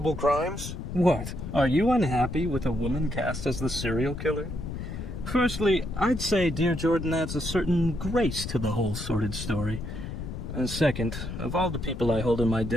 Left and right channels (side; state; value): left; noise; rumble, 7 dB below the sound